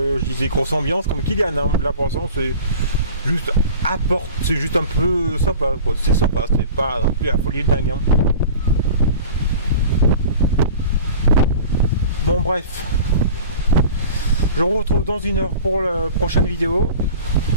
disais grosse ambiance comme Kylian. Hein. Là pour l'instant c'est juste un peu sympa, quoi. C'est sympa, c'est pas non plus la folie de dingue. Hein. Bon bref. Je vous retrouve dans 1 heure pour la prochaine vidéo.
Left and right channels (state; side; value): inverted; both; correlation -0.39